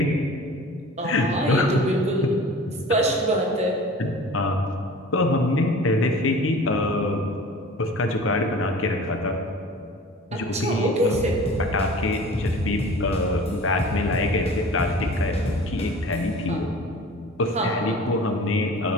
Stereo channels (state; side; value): normal; both; correlation 0.42